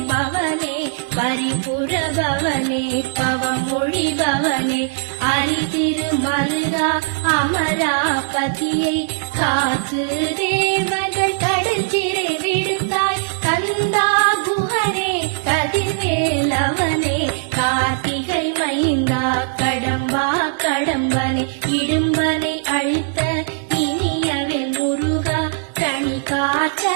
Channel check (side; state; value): left; silent; digital silence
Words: பவனே பரிபுர பவனே பவமொழி பவனே அரிதிருமல்கா அமராபதியை காத்து தேவர்கள் கடற்சிறை